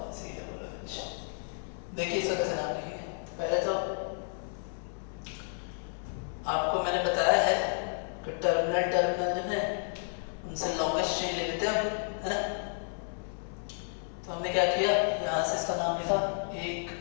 COOH। देखिए इसका कैसे नाम लिखेंगे। पहले तो आपको मैंने बताया है कि टर्मिनल जो है उनसे लॉन्गेस्ट चेन ले लेते हैं, है ना। तो हमने क्या किया, यहाँ से इसका नाम लिखा 1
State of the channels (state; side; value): silent; right; 57 dB below the other